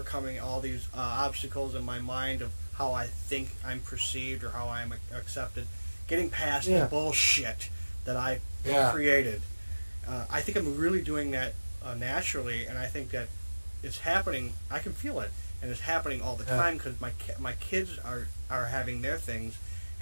all these obstacles in my mind of how I think I'm perceived or how I'm accepted, getting past the bullshit that I created. I think I'm really doing that naturally, and I think that it's happening. I can feel it, and it's happening all the time because my kids are having their things,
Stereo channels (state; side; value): inverted; both; correlation -1.00